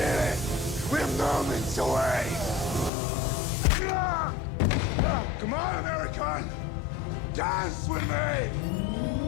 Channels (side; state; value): right; drops out; at 2.9 s